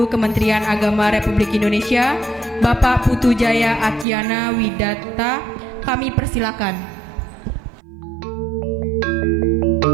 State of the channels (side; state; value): left; drops out; at 4.0 s